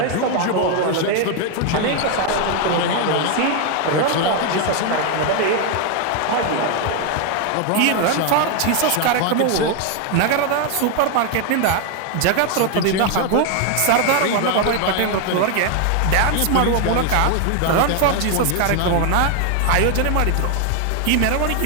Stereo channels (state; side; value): different; both; correlation 0.01